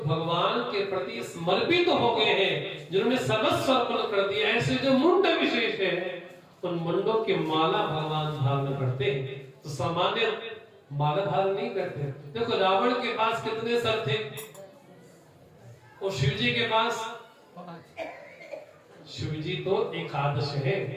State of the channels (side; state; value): both; identical; correlation 1.00